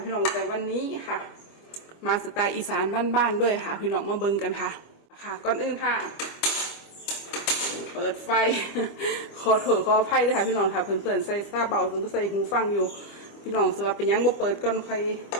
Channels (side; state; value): right; late; 25 ms